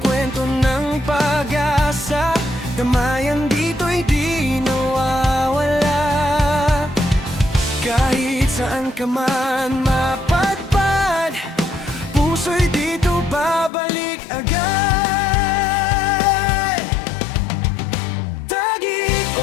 kwento ng pag-asa, damayan dito'y di nawawala. Kahit saan ka man mapadpad, puso'y dito babalik agad. Taguig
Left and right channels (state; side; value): drops out; right; at 13.7 s